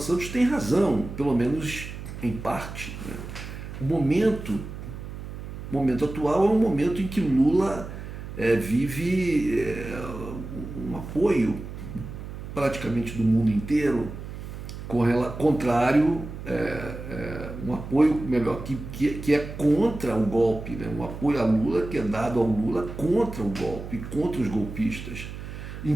Santos tem razão, pelo menos em parte. O momento atual é um momento em que Lula vive um apoio praticamente do mundo inteiro, contrário, um apoio melhor que é contra o golpe, né? Um apoio a Lula que é dado ao Lula contra o golpe, contra os golpistas,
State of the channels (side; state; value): right; noise; hum, 10 dB below the sound